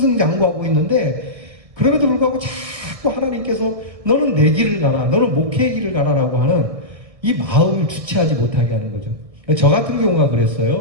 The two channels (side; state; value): left; late; 1.6 ms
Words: 있는데 그럼에도 불구하고 자꾸 하나님께서 너는 내 길을 가라, 너는 목회의 길을 가라라고 하는 이 마음을 주체하지 못하게 하는 거죠. 저 같은 경우가